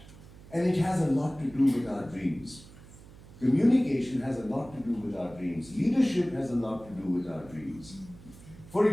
And it has a lot to do with our dreams. Communication has a lot to do with our dreams. Leadership has a lot to do with our dreams. For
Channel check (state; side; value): noise; right; hum, 20 dB below the sound